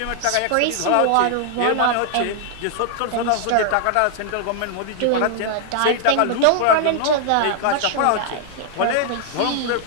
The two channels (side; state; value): both; different; correlation 0.00